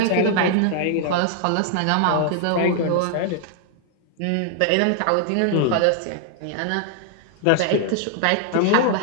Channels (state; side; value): different; both; correlation 0.00